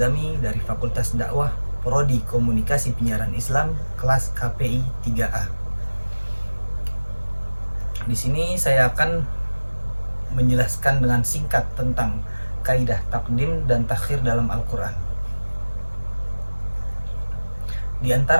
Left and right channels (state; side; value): inverted; both; correlation -1.00